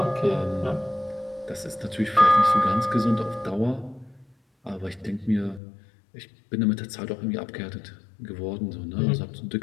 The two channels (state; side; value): drops out; right; at 5.6 s